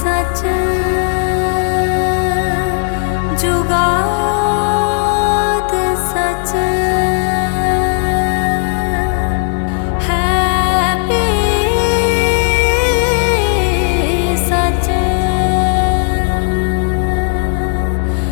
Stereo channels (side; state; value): right; silent; 65 dB below the other